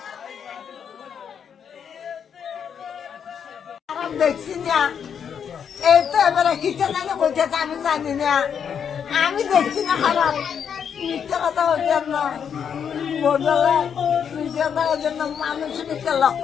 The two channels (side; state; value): right; quieter; 7.6 dB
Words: দেখছি না এই তো এবারে কিচেন আনে বলতেছে আমি জানি না আমি দেখছি না খারাপ মিথ্যা কথা বলতাম না বদলে মিথ্যা দেওয়ার জন্য মানুষের একটা